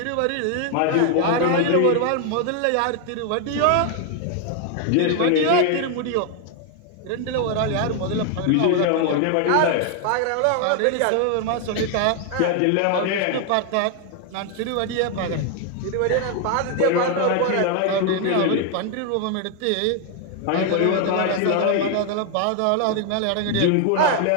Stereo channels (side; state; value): both; different; correlation 0.00